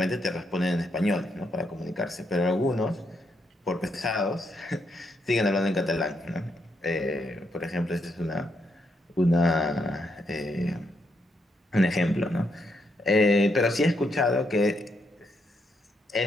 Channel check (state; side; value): normal; both; correlation 0.78